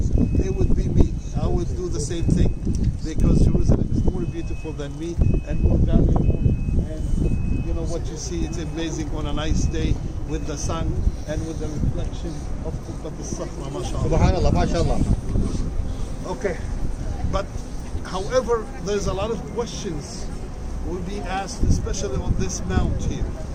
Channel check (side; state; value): both; identical; correlation 1.00